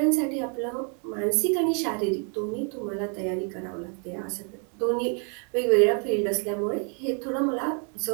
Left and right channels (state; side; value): quieter; left; 39.8 dB